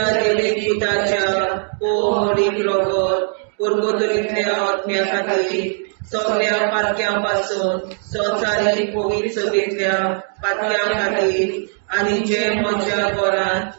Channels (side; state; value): left; silent; 56 dB below the other